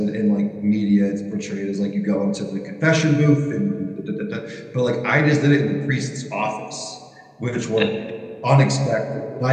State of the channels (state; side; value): identical; both; correlation 1.00